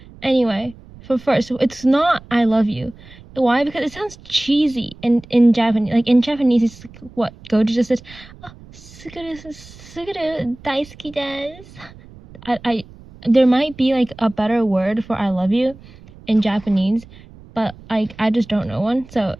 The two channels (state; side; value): noise; right; rumble, 21 dB below the sound